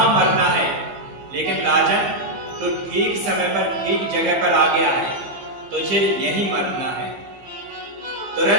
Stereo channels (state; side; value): late; left; 15 ms